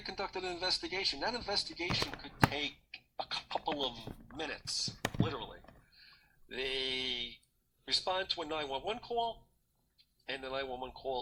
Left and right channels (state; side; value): identical; both; correlation 1.00